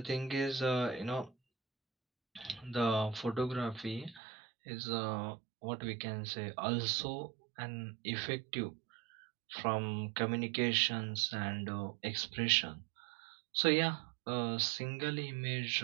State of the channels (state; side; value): drops out; left; at 4.2 s